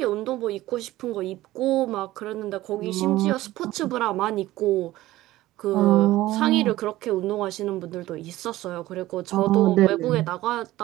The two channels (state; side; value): quieter; left; 16.4 dB